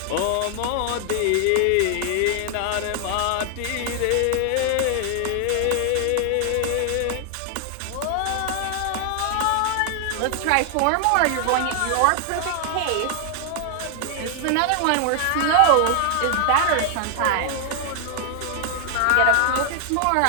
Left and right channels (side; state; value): both; different; correlation 0.00